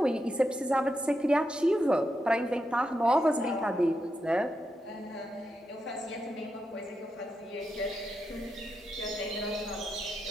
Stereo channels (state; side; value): normal; both; correlation 0.85